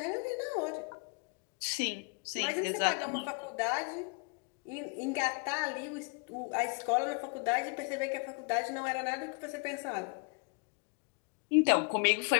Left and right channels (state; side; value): quieter; right; 34.2 dB